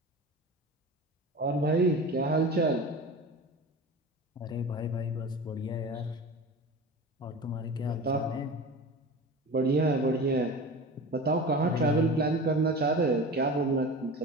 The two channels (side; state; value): both; normal; correlation 0.33